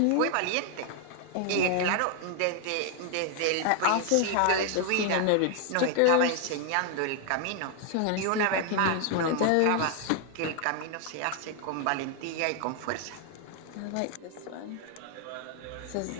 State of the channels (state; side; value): different; both; correlation 0.00